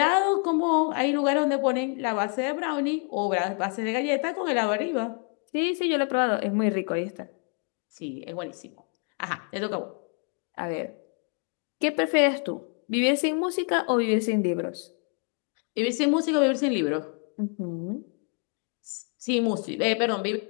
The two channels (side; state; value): right; quieter; 39.7 dB